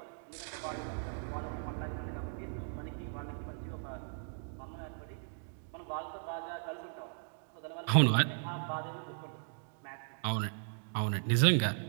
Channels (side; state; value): left; silent; digital silence